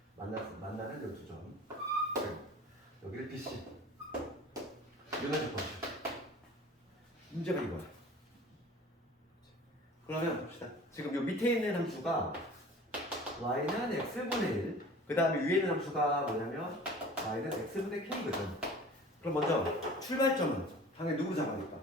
만나는 이 두 점. 여기를 BC. 이거는 조건. 문제가 이거야. 그러면 봅시다. 지금 요 밑에 있는 함수가 y는 x분의 1. 그 다음에 위에 있는 함수가 뭐냐면 y는 x분의 k거든. 그럼 먼저 출발점은 당연히 누구 잡아니까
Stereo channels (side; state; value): both; normal; correlation 0.43